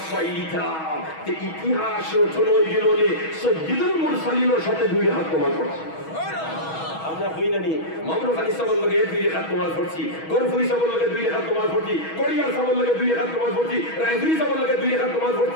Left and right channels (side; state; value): right; late; 6.2 ms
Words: পাইতাম তে ইতিহাস রচনা হয়ে গেল রে সাইয়্যিদুল মুরসালিনের সাথে দুই রেখাত নামাজ পড়ছে আমরা হই না নি মামরু খালি সাবল লগে দুই রেখাত নামাজ পড়ছি গরফুই সাবল লগে দুই রেখাত নামাজ পড়ছি কোরিয়ার সাবল লগে দুই রেখাত নামাজ পড়ছি রাইফুই সাবল লগে দুই রেখাত নামাজ